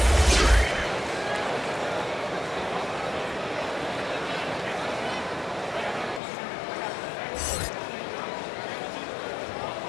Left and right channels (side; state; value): right; drops out; at 6.2 s